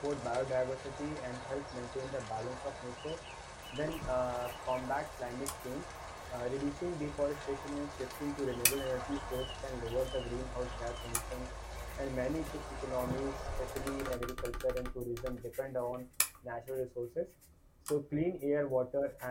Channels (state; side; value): identical; both; correlation 1.00